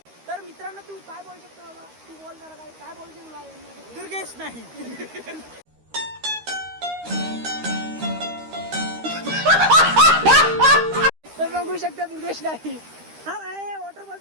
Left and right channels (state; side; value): late; left; 13 ms